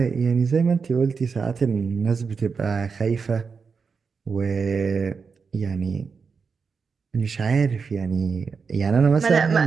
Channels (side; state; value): left; quieter; 5.4 dB